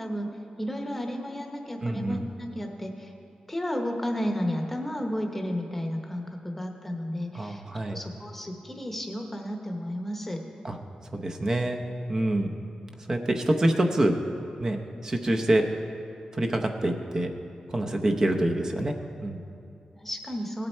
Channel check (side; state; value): both; normal; correlation 0.94